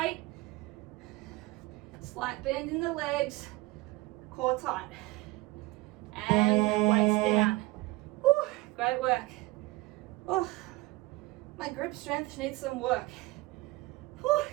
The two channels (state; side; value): quieter; left; 20.0 dB